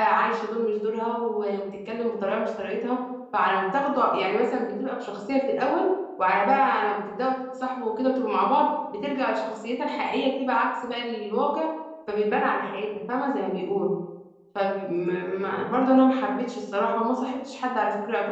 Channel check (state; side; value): identical; both; correlation 1.00